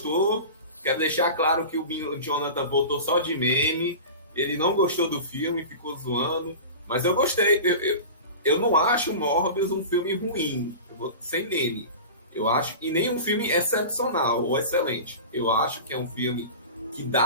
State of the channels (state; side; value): inverted; both; correlation -0.32